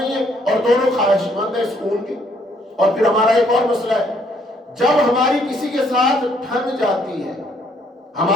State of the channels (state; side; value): normal; both; correlation 0.67